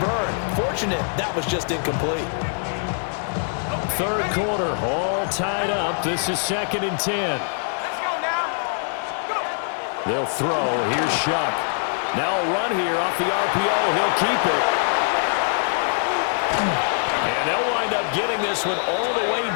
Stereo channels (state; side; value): silent; right; 62 dB below the other